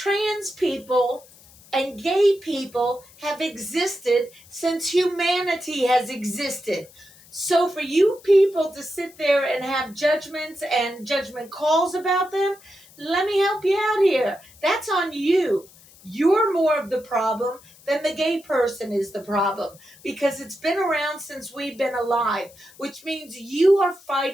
people and gay people have existed since humanity has existed. So for you people to sit there and have judgments and judgment calls about them, let me help you out here. That's on you. You're more of the problem than the gay person is the problem, because it's been around since we've been alive, which means you are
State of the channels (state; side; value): noise; left; hiss, 24 dB below the sound